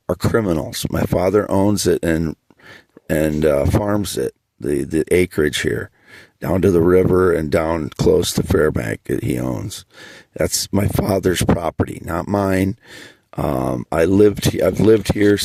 are criminals. My father owns it and farms it, the acreage here, down to the river and down close to Fairbank that he owns. That's my father's property, not mine. I've lived here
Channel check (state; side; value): identical; both; correlation 1.00